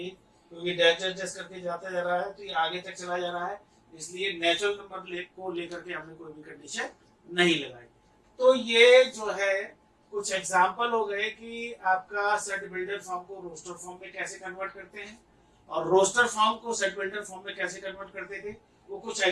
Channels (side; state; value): both; identical; correlation 1.00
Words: क्योंकि डैश डैश डैश करके जाता जा रहा है तो ये आगे तक चला जा रहा है, इसलिए नेचुरल नंबर को लेकर के हमने कोई भी कंडीशन नहीं लगाई। तो ये जो है कुछ एग्जांपल हो गए कि आपका सेट बिल्डर फॉर्म को रोस्टर फॉर्म में कैसे कन्वर्ट करते हैं, और रोस्टर फॉर्म को सेट बिल्डर फॉर्म में कैसे कन्वर्ट करते थे, वो कुछ